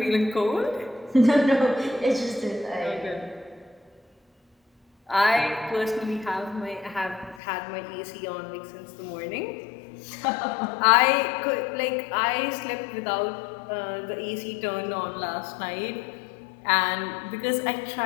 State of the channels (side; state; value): right; drops out; at 7.4 s